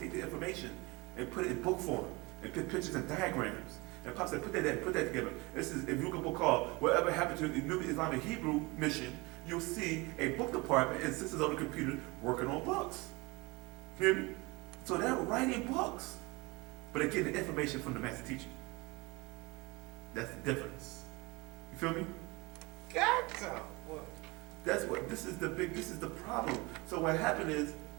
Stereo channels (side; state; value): left; quieter; 24.9 dB